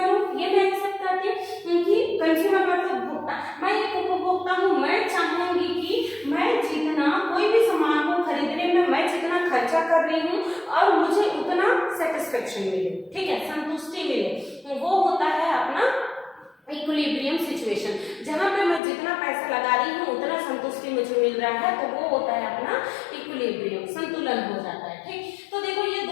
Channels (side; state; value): right; drops out; at 18.8 s